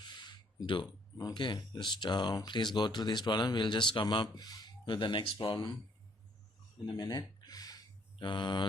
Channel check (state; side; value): normal; both; correlation 0.65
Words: do. Okay, just please go through this problem. We'll just come up with the next problem in a minute.